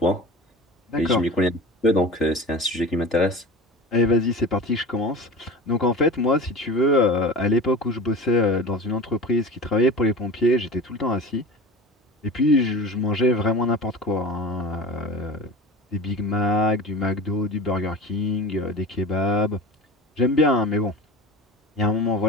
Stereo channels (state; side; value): normal; both; correlation 0.33